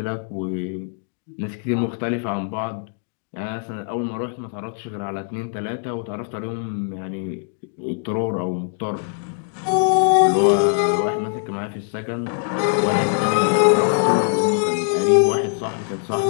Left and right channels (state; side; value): silent; right; 64 dB below the other